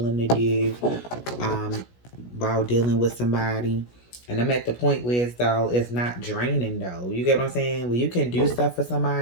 to do while dealing with somebody. And I'm at the point where it's not draining though. You get what I'm saying? When you can do stuff for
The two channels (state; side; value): late; right; 16 ms